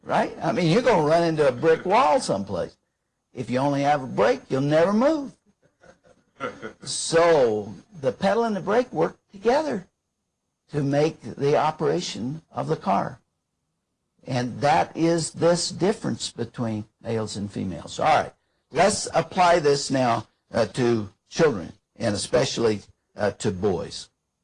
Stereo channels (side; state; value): both; identical; correlation 1.00